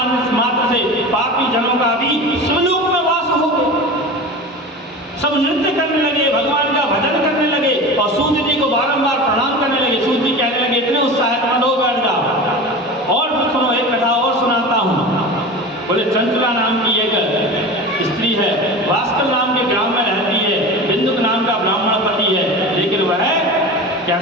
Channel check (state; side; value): normal; both; correlation 0.31